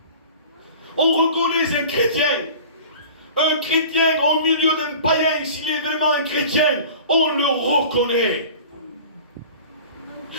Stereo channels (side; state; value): both; inverted; correlation -0.41